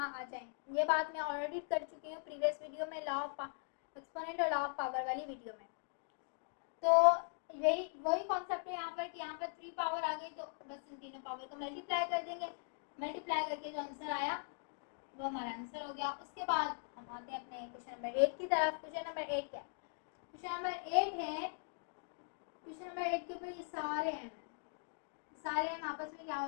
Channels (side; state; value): right; silent; digital silence